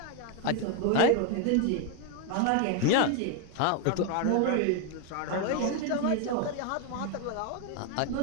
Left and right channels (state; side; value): different; both; correlation 0.01